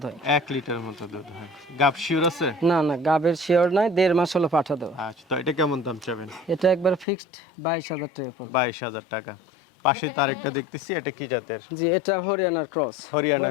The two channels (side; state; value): right; drops out; at 7.1 s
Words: হয়। 1 লিটার মতো দুধ হয়। গাব শিওর আছে? না না, গাবের শিওর নাই, 1.5 মাস হলো পাঠা দেওয়া। আচ্ছা, তো এটা কেমন দাম চাবেন? এটা একবার ফিক্সড 22,000 টাকা পড়বে। 22,000 টাকা। পাশে তার একটা দেখতেছি, এটা কি জাতের? জি, এটা হরিয়ানার ক্রস। হরিয়ানা